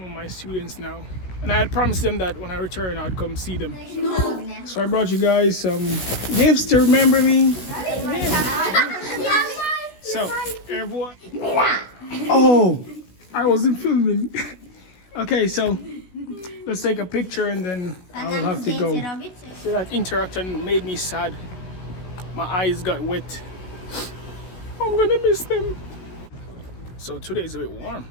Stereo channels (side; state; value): right; late; 16 ms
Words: of my students now. And I had promised them that when I return, I'd come see them. So I brought you guys some gifts to remember me. So, everyone. Oh, I wasn't filming. Okay, so let's take a picture and then I'll have to go. So that interaction made me sad. My eyes got wet. I'm gonna miss them. So today is a bit warm.